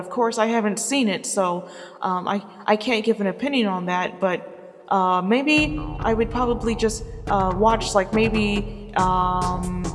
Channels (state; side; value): identical; both; correlation 1.00